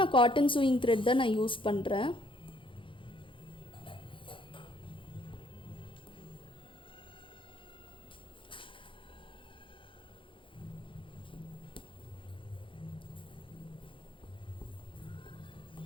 நான் காட்டன் சூயிங் த்ரெட் தான் நான் யூஸ் பண்ணுறேன்.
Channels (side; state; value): right; late; 0.25 ms